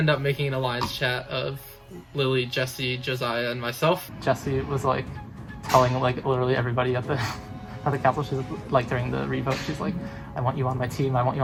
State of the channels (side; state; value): both; identical; correlation 1.00